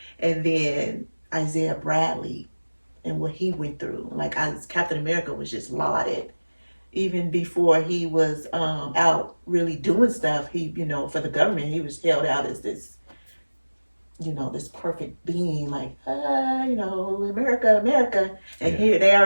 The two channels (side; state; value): both; inverted; correlation -1.00